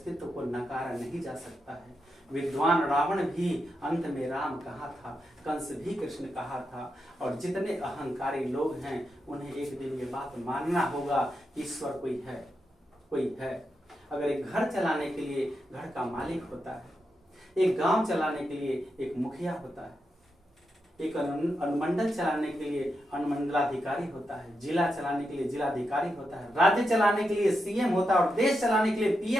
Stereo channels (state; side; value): normal; both; correlation 0.86